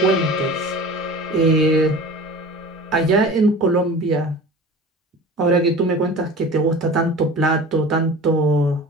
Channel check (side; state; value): both; normal; correlation 0.38